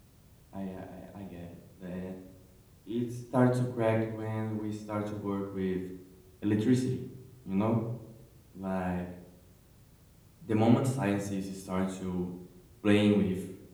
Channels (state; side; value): identical; both; correlation 1.00